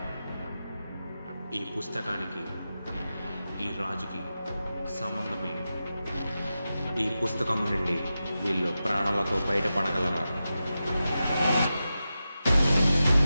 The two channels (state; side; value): inverted; both; correlation -0.92